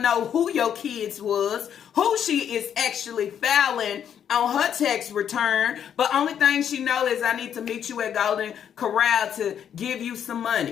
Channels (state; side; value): quieter; right; 8.9 dB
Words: know who your kids was, who she is actually filing on her tax return, but only thing she know is I need to meet you at Golden Corral to give you some